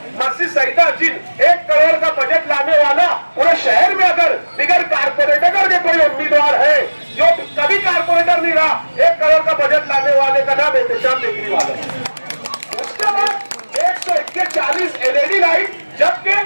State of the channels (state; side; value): inverted; both; correlation -1.00